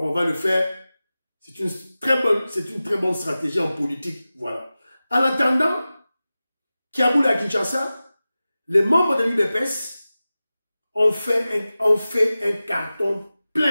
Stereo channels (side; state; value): both; inverted; correlation -0.96